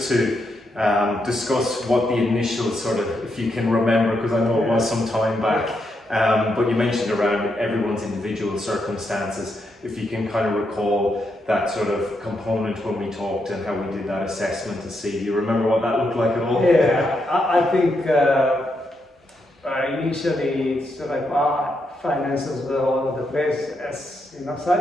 to discuss what the initial sort of, if you can remember, because I know it was some time back, but you mentioned around everyone's individual circumstances, if you can kind of recall that sort of component when we talked and how we did that assessment to see. Do you remember what that looked like at all? Yeah, I think initially it's like our finances were all over the place as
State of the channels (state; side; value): normal; both; correlation 0.81